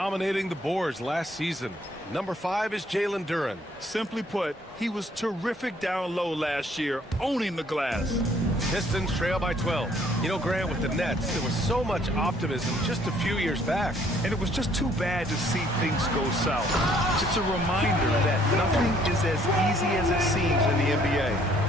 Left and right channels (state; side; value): normal; both; correlation 0.63